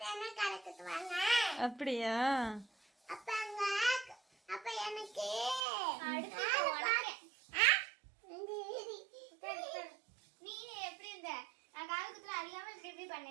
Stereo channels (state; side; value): drops out; left; at 5.7 s